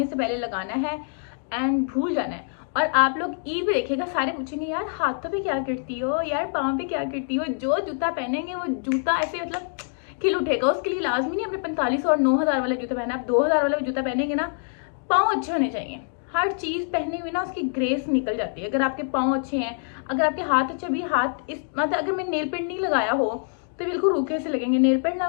से पहले लगाना है एंड भूल जाना है। और आप लोग ईद देखिएगा, सारे पूछेंगे यार हाथों पे क्या करती हो, यार पाँव पे क्या करती हो। जो जूता पहनेंगे वो जूता ऐसे मतलब खिल उठेगा। उसके लिए लाजमी नहीं अपने 45 और 9000 वाला जूता पहना। आप 2000 वाला जूता पहनेंगे ना, पाँव अच्छे होने चाहिए। हर चीज पहने हुए ना उसकी ग्रेस निकल जाती है। अगर आपके पाँव अच्छे हैं, अगर आपके हाथ अच्छे, भी हाथ इस मतलब अगर मैं नेल पेंट नहीं लगाया हो तो बिल्कुल रूखे से लगेंगे। नेल पेंट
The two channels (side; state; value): right; silent; 62 dB below the other